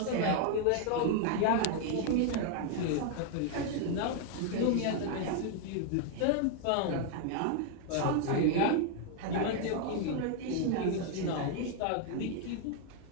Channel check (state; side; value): different; both; correlation 0.00